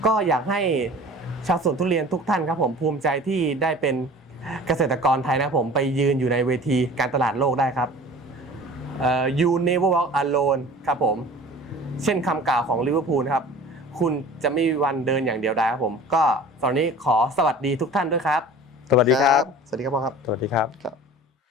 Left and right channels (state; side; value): normal; both; correlation 0.42